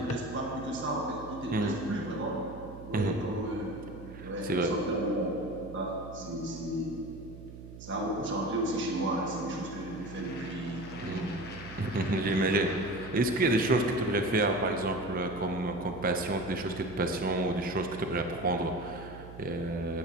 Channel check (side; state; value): right; noise; hum, 14 dB below the sound